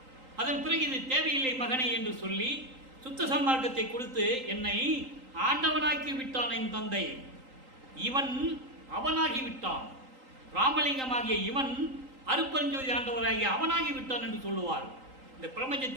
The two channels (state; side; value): late; left; 3.8 ms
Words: அதன் பிறகு இது தேவையில்லை மகனை என்று சொல்லி சுத்த சன்மார்க்கத்தை கொடுத்து என்னை ஆண்டவனாக்கி விட்டான் என் தந்தை. இவன் அவனாகி விட்டான். ராமலிங்கமாகிய இவன் அருட்பெருஞ்சோதி ஆண்டவராகிய அவனாகி விட்டான் என்று சொல்லுவார். இந்த